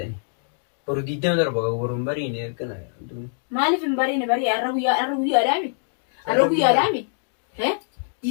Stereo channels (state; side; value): silent; right; 63 dB below the other